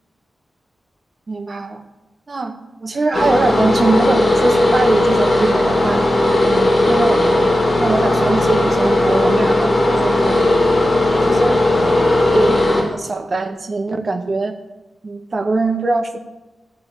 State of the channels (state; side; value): normal; both; correlation 0.92